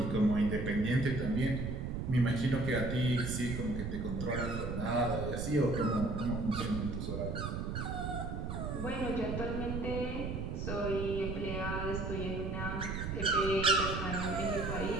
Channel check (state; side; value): noise; right; rumble, 3 dB below the sound